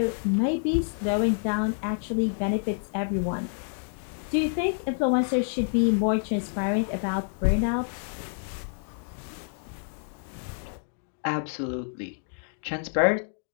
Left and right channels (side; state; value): right; silent; digital silence